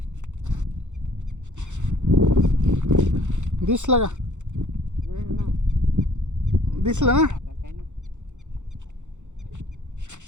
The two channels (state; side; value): late; left; 0.84 ms